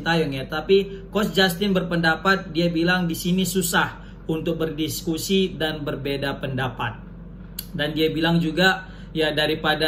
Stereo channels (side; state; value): both; identical; correlation 1.00